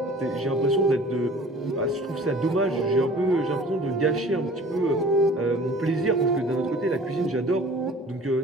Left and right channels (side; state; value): both; normal; correlation 0.47